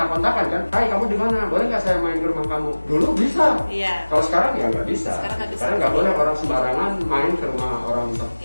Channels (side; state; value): both; inverted; correlation -1.00